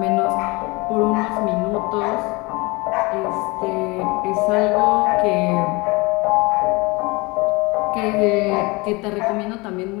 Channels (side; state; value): right; quieter; 25.4 dB